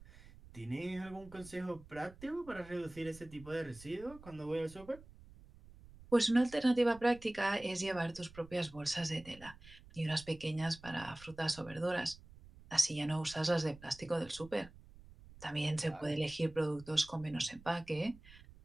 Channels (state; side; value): noise; right; rumble, 20 dB below the sound